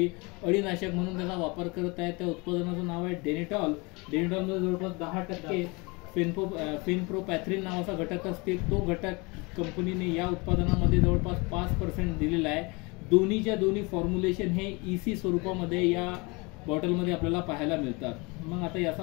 अळीनाशक म्हणून त्याचा वापर करत आहेत। त्या उत्पादनाचं नाव आहे डेनिटॉल। डेनिटॉलमध्ये जवळपास 10% फेनप्रोपॅथ्रिन नावाचा घटक असते। तो घटक कंपनीने या उत्पादनामध्ये जवळपास 5% दिलेला आहे। दोन्हीच्या दोन्ही फॉर्म्युलेशन हे EC स्वरूपामध्ये या बॉटलमध्ये आपल्याला पाहायला मिळतात। मग आता याचा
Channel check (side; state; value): right; quieter; 27.4 dB